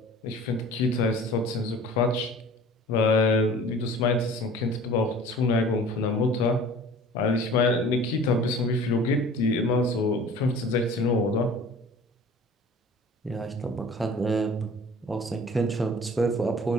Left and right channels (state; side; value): normal; both; correlation 0.45